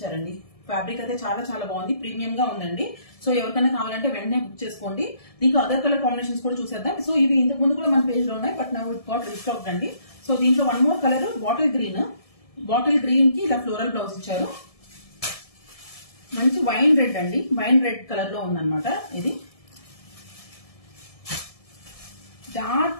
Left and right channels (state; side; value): late; right; 1.7 ms